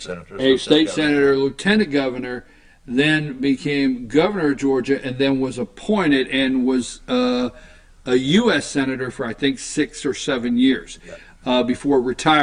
senator. A state senator, lieutenant governor, then became governor of Georgia, and then was appointed and was a U.S. senator for, I think, 6 or 7 years before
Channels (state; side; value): identical; both; correlation 1.00